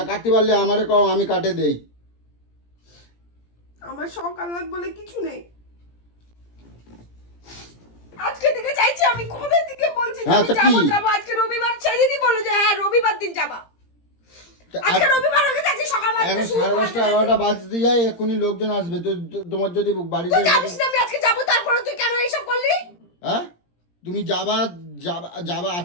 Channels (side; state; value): right; late; 17 ms